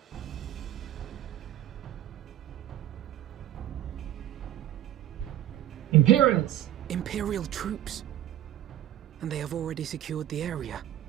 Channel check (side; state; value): left; quieter; 13.0 dB